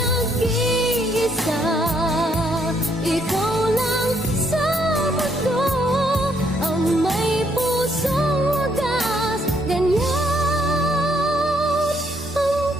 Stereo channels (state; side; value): normal; both; correlation 0.71